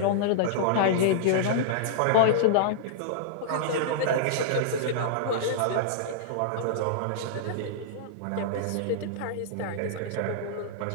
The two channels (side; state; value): both; different; correlation -0.02